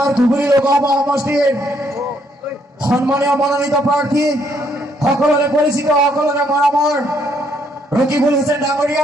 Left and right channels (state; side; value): normal; both; correlation 0.71